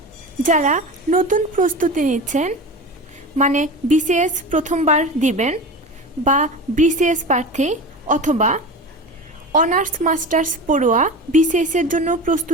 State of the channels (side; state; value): both; normal; correlation 0.30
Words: যারা নতুন প্রস্তুতি নিচ্ছেন, মানে বিসিএস প্রথমবার দিবেন বা বিসিএস প্রার্থী অথবা অনার্স মাস্টার্স পড়ুয়া বিসিএস এর জন্য